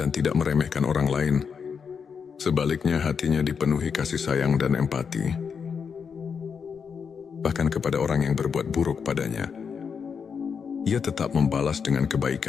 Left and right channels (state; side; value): quieter; right; 6.3 dB